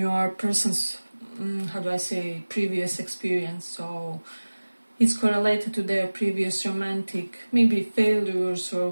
person's, how do I say, previous experience. So it's correlated to their previous romantic, maybe failures, or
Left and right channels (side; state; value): both; inverted; correlation -1.00